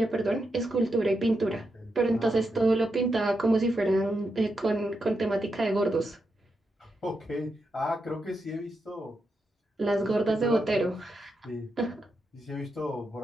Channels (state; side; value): normal; both; correlation 0.85